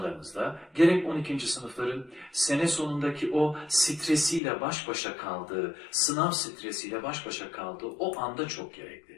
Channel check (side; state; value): right; drops out; at 4.4 s